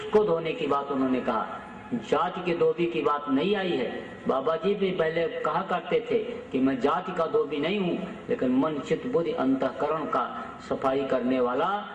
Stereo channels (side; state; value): both; identical; correlation 1.00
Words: धोने की बात उन्होंने कहा। जाति के धोबी की बात नहीं आई है। बाबा जी भी पहले कहा करते थे कि मैं जाति का धोबी नहीं हूँ, लेकिन मन चित्त बुद्धि अंतःकरण का सफाई करने वाला